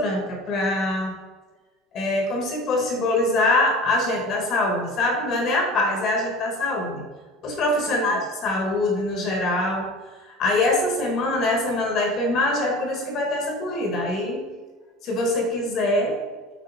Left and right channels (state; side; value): normal; both; correlation 0.37